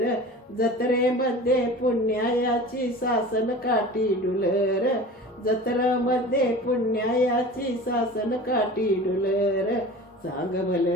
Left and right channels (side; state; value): both; normal; correlation 0.38